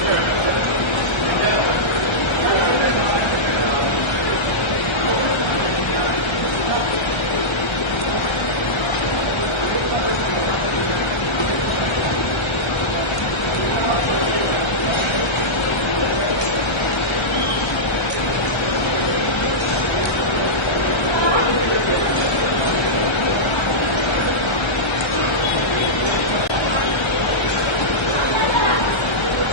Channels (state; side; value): late; right; 1.3 ms